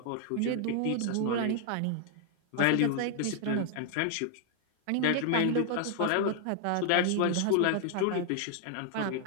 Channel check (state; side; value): different; both; correlation 0.00